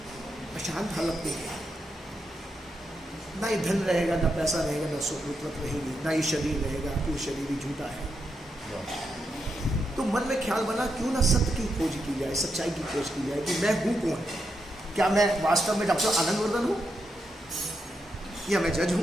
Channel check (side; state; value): both; normal; correlation 0.84